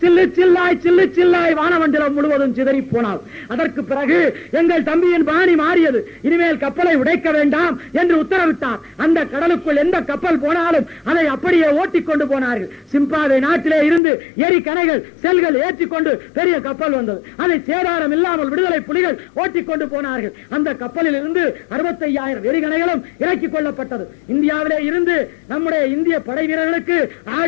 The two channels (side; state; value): right; drops out; at 14.0 s